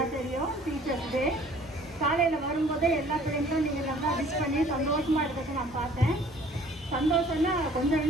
தெரியும். டீச்சர்ஸ் டே காலையில் வரும்போதே எல்லா பிள்ளைங்களும் நீங்கள் நல்லா விஷ் பண்ணி சந்தோஷமாக இருக்கிறத நான் பார்த்தேன். சந்தோஷம்னா கொஞ்சம்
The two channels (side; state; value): both; normal; correlation 0.54